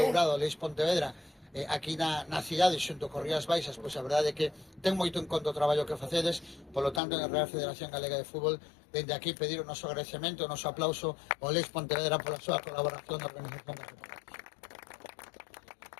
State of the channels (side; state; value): right; drops out; at 7.0 s